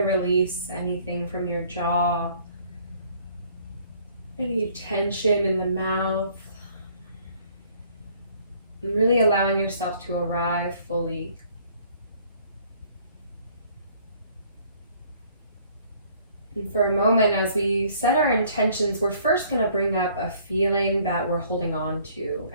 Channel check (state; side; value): inverted; both; correlation -0.59